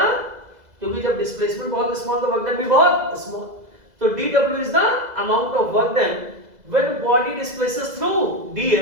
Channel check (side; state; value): left; late; 2.0 ms